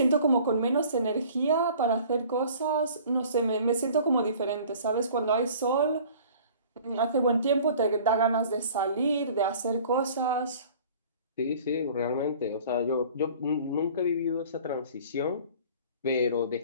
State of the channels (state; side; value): inverted; both; correlation -0.48